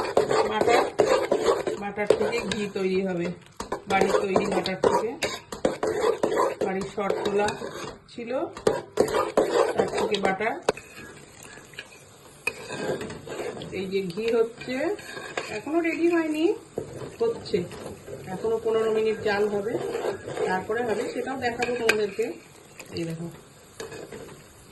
বাটার থেকে ঘি তৈরি হবে, বাড়ির তৈরি বাটার থেকে। বাড়ির শর্ট তোলা ছিল, তার থেকে বাটার। এই যে ঘি হচ্ছে, এখনো রেডি হয়নি, হচ্ছে এখনো 15 মিনিট জাল হবে, তারপরে হবে, সেটাও দেখাবো তোমাদেরকে। এই দেখো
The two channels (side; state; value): both; identical; correlation 1.00